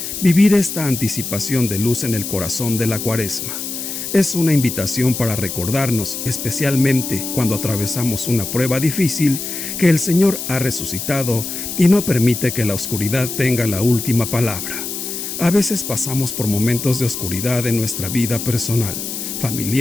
vivir esta anticipación de luz en el corazón de la Cuaresma. Es una invitación para recordarnos, especialmente cuando atravesamos una prueba difícil, que el Señor ha resucitado y no permite que la oscuridad tenga la última palabra. A veces pasamos por momentos de oscuridad en nuestra vida personal,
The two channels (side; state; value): left; noise; hiss, 6 dB below the sound